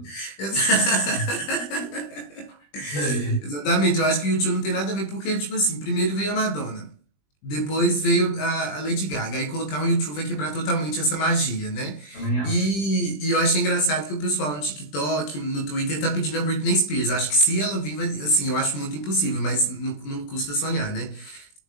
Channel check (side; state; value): right; late; 20 ms